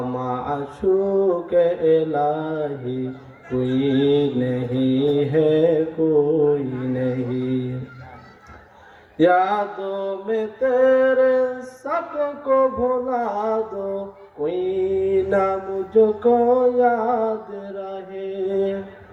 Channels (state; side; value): identical; both; correlation 1.00